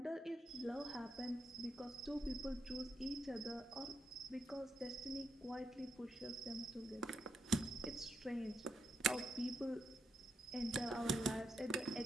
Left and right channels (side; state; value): both; normal; correlation 0.82